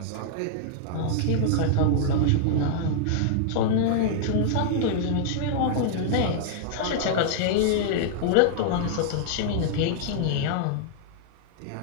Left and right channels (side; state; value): both; different; correlation -0.01